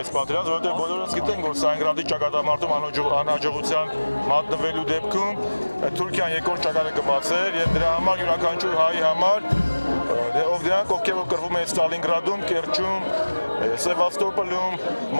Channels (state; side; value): inverted; both; correlation -1.00